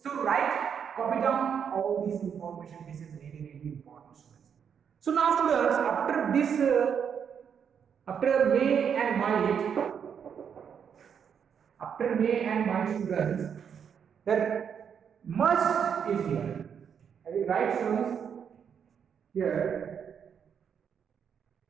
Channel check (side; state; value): left; quieter; 7.5 dB